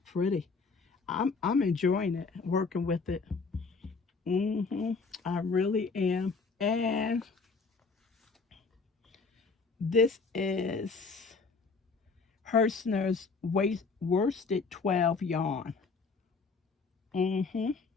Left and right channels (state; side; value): quieter; right; 4.5 dB